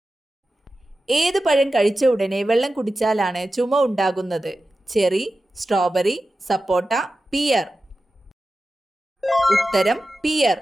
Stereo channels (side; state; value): both; normal; correlation 0.93